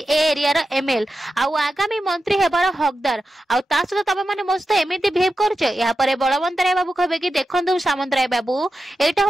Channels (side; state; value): both; normal; correlation 0.91